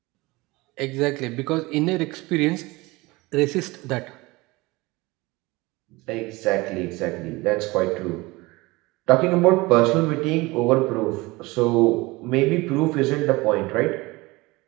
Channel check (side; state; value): left; quieter; 22.4 dB